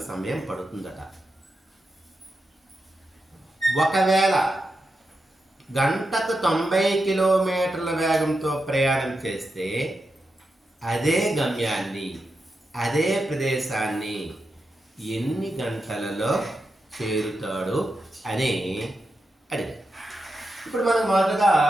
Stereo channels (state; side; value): normal; both; correlation 0.88